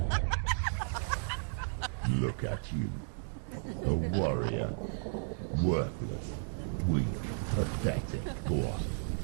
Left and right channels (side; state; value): left; silent; digital silence